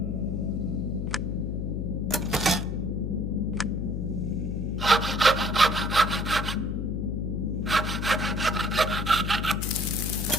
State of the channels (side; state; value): left; noise; hum, 2 dB below the sound